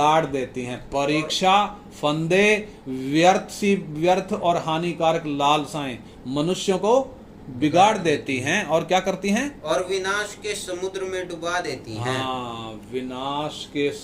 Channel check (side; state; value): both; identical; correlation 1.00